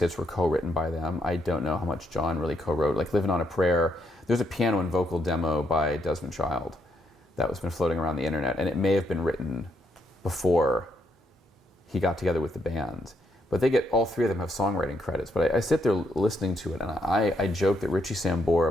were co-written by them. I don't know how much John really co-wrote. Like "Living on a Prayer," there's a piano and vocal demo by Desmond Child that was been floating around the internet, and it may have been written before he got together with the band. But all three of them have songwriting credits. But I sit there listening to it, and I joke that Richie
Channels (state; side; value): normal; both; correlation 0.76